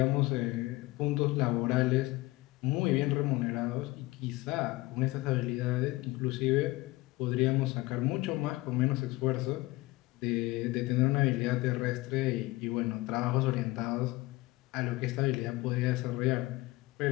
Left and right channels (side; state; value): right; quieter; 20.4 dB